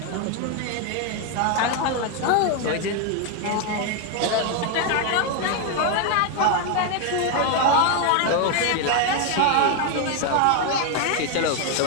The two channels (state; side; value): different; both; correlation 0.01